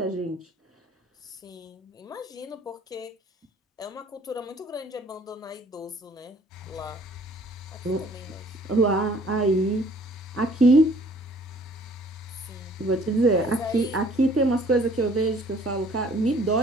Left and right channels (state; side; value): normal; both; correlation 0.56